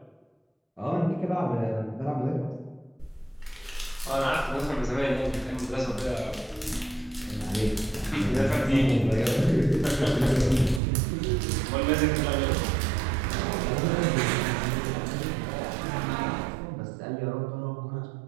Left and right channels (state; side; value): drops out; left; at 10.8 s